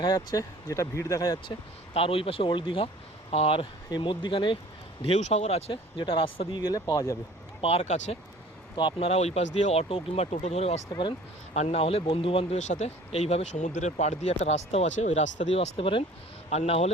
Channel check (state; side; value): normal; both; correlation 0.49